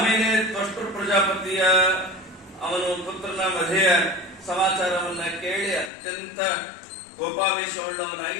ತ್ವಷ್ಟೃ ಪ್ರಜಾಪತಿಯ ಅವನು ಪುತ್ರನ ಮಧೆಯ ಸಮಾಚಾರವನ್ನ ಕೇಳಿ ಅತ್ಯಂತ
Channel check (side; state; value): right; drops out; at 5.9 s